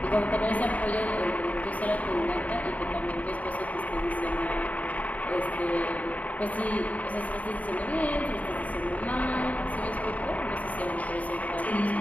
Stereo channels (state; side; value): late; right; 0.071 ms